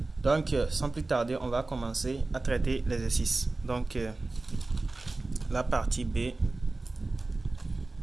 Donc sans plus tarder, on va commencer à traiter l'exercice. Donc la partie B.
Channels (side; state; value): left; quieter; 3.2 dB